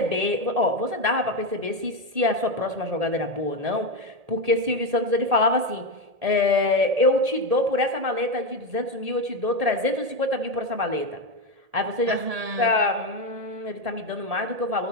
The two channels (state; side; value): late; left; 1.7 ms